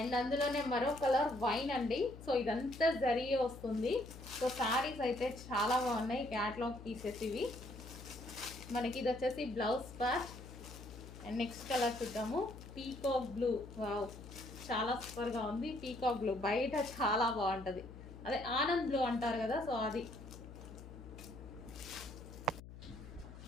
అందులోనే మరో కలర్ వైన్ అండి. సో ఇదంతా జరీ వస్తుంది. సో శారీస్ అయితే చాలా బాగున్నాయి, క్యాట్లాగ్ పీసెస్ ఇవి. మనకి ఇది వచ్చేసి blouse part. And next colour చూద్దాము, పీకాక్ బ్లూ. వావ్, చాలా సూపర్గా ఉంది. పీకాక్ బ్లూ బయట చాలా బాగుంటుంది, అదే ఆనంద్ బ్లూ అంటారు కదా, సో అది.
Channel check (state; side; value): noise; left; hum, 14 dB below the sound